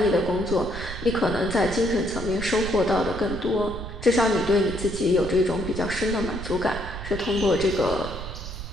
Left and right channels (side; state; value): right; noise; rumble, 8 dB below the sound